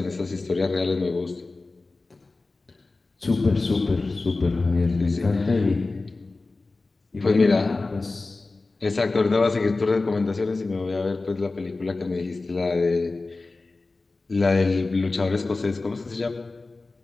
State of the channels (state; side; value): quieter; right; 3.5 dB